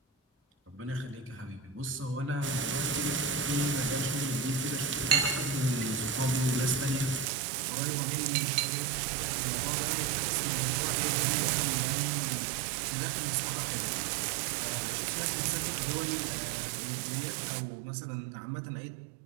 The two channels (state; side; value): drops out; left; at 7.2 s